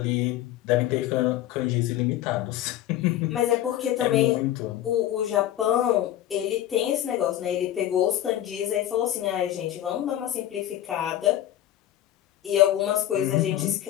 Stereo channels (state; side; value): quieter; right; 12.6 dB